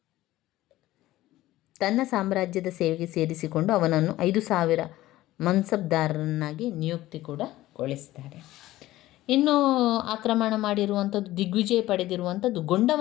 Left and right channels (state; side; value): quieter; right; 16.1 dB